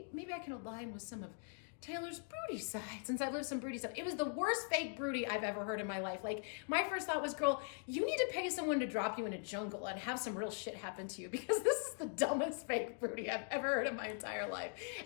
I can align with some of Taylor's broody side, since I've lived some broody stuff. It was the worst fake broody I've ever heard in my life. My first thought was, girl, you need to pay someone to drop you in a jungle and have some real shit happen to you, because this is the dumbest fake broody I've ever heard in my entire life.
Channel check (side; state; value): right; silent; 50 dB below the other